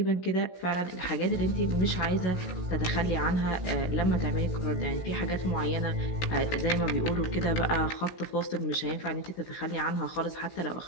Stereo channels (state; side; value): late; right; 16 ms